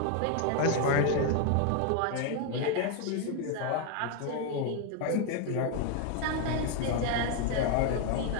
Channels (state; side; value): different; both; correlation 0.01